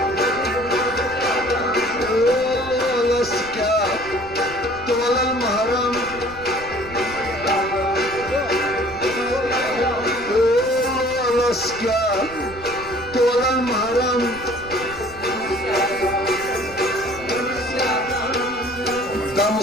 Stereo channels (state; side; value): noise; right; rumble, 17 dB below the sound